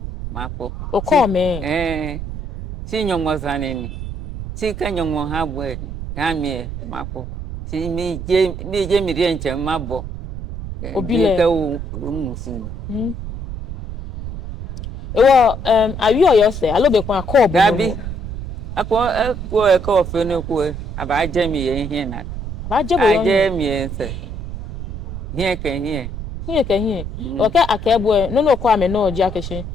mapo. O ko me. Si nyong mo saneni. Si ke nyong mo ha bwe ha mi mapo. Si mi je mi rien che mabo. Obile. Ke o musin. Ewo awi oyo se alobe kwa ko bo. Gabi. Ako e ko fe no ko aba je mi ye hin na. Ba je bo yo. Aje mi ense. Hie ke hie. Hie ke hie. Oke akebo no no ko ame no oji akeshin.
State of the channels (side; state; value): right; noise; rumble, 8 dB below the sound